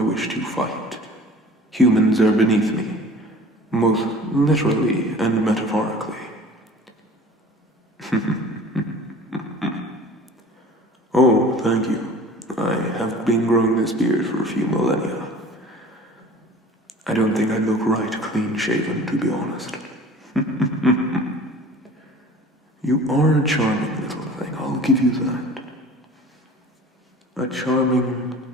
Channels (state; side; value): normal; both; correlation 0.44